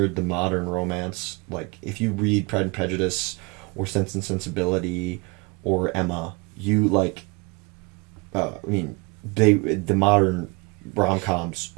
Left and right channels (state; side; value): quieter; left; 28.5 dB